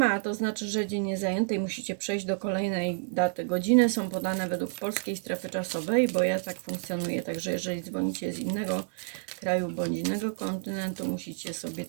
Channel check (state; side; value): silent; left; 58 dB below the other